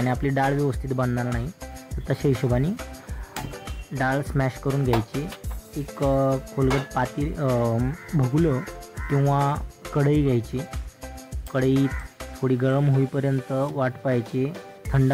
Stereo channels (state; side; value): identical; both; correlation 1.00